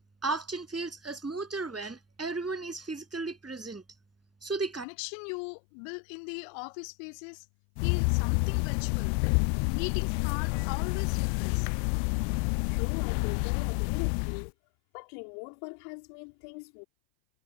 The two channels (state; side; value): drops out; right; at 4.9 s